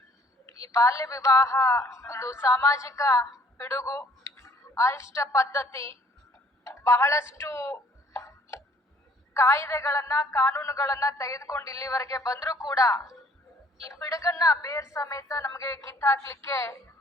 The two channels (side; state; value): both; normal; correlation 0.59